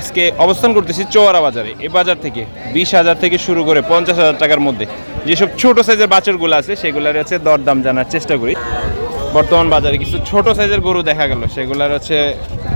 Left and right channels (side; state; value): both; inverted; correlation -1.00